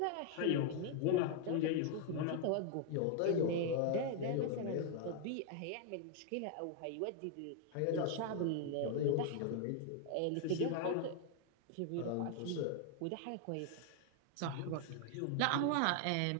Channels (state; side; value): different; both; correlation 0.00